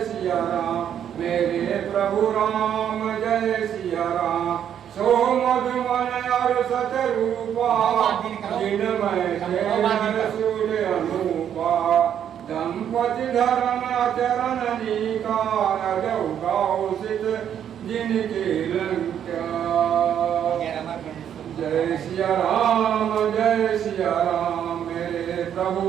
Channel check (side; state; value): left; quieter; 9.3 dB